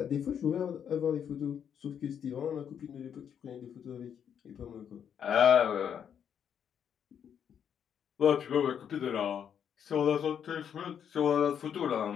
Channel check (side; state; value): right; quieter; 8.3 dB